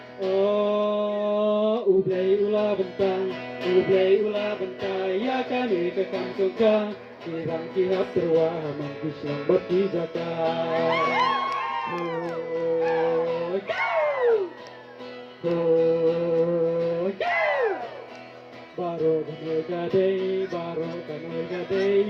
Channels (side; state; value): both; identical; correlation 1.00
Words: oh ublay ula bentang ublay ula bentai ya kami kekam suka kirang kihap terwah mampus lambat di zaka baro kanoy